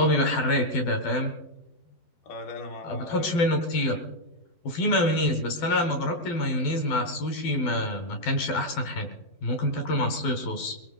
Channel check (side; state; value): right; late; 12 ms